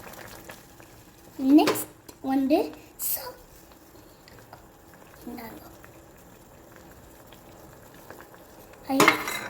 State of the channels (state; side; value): identical; both; correlation 1.00